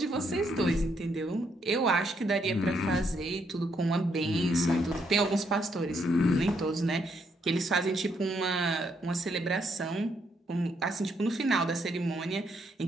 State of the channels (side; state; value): both; normal; correlation 0.74